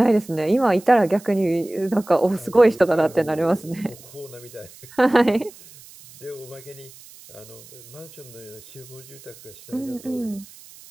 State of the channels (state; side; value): noise; right; hiss, 21 dB below the sound